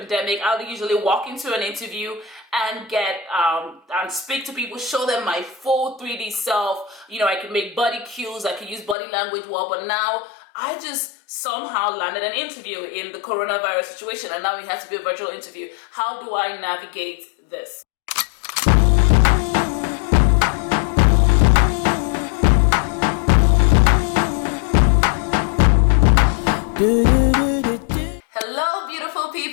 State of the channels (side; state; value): right; drops out; at 9.0 s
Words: I would usually walk into an interview and get and speak to people, show them my full 3D self. You know, I can make body cues, I can use body language well, but now I just somehow landed an interview in the coronavirus situation, and now it has to be a virtual interview. How do I navigate this? Hello beautiful